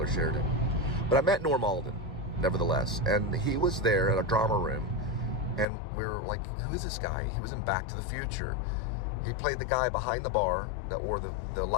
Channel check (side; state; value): right; drops out; at 5.7 s